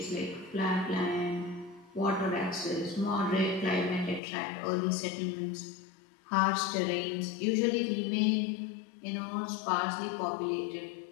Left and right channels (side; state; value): right; drops out; at 4.2 s